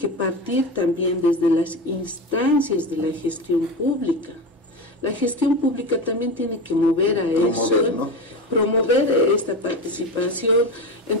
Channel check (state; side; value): normal; both; correlation 0.22